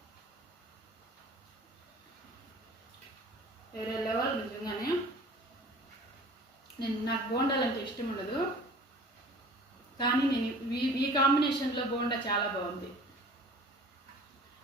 వేరే లెవెల్ నిజంగానే. నాకు బోండాలు అంటే ఇష్టం ఉండదు, కానీ నేను ఈ కాంబినేషన్లో బోండా చాలా బాగుంది.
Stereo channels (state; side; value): normal; both; correlation 0.45